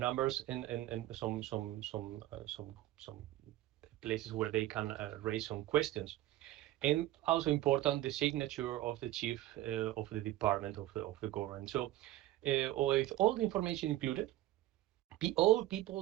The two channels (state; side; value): quieter; left; 15.1 dB